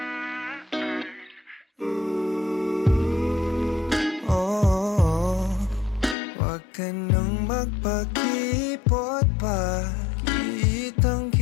Oh, wag ka nang magpakipot pa. Kitang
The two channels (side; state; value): right; drops out; at 6.2 s